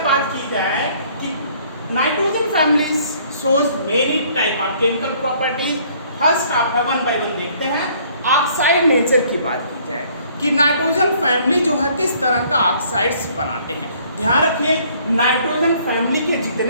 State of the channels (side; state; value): both; inverted; correlation -0.60